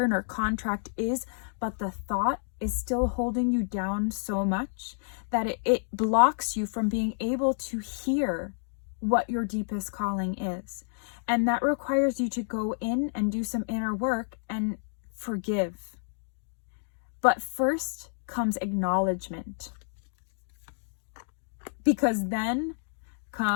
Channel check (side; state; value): right; silent; digital silence